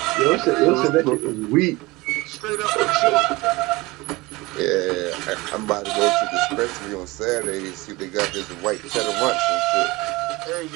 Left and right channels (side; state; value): left; quieter; 22.1 dB